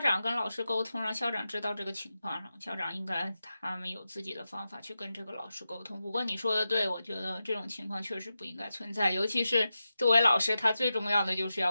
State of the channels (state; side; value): inverted; both; correlation -0.91